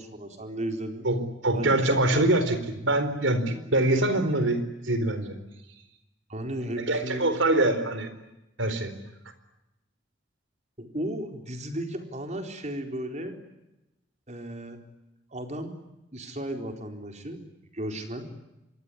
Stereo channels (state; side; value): normal; both; correlation 0.13